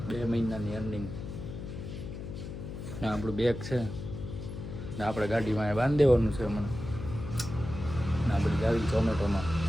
2 મહિનાની અર્નિંગ. ને આપણું બેગ છે ને આપણે ગાડીમાં બાંધી દેવાનું છે હમણાં. ને આપણે જાવી ઝોમેટોમાં.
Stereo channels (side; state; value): left; noise; hum, 8 dB below the sound